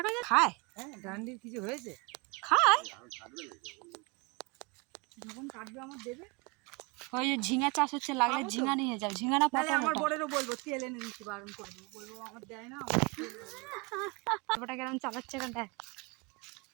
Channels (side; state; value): left; quieter; 27.3 dB